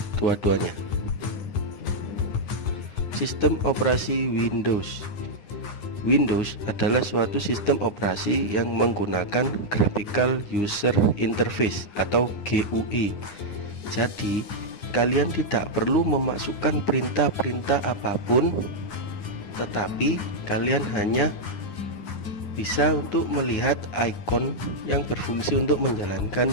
dua-duanya. Sistem operasi Windows. Windows adalah suatu sistem operasi yang menggunakan Graphical User Interface atau GUI. Jadi, kalian tidak perlu memasukkan perintah-perintah apapun, tetapi kalian hanya bisa untuk melihat ikon yang berfungsi untuk menjalankan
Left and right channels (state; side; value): late; right; 9.8 ms